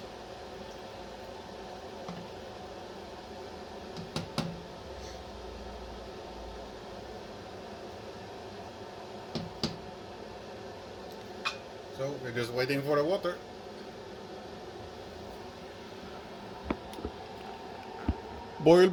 So we're just waiting for the water. Boil,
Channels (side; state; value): both; identical; correlation 1.00